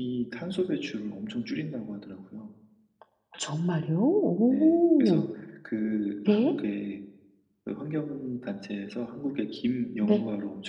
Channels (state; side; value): identical; both; correlation 1.00